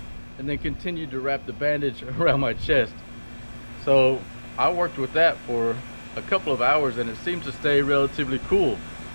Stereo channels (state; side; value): inverted; both; correlation -1.00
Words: and then continued to wrap the bandage around my chest. So I worked with that for a couple of hours, and it seems to stay relatively cool.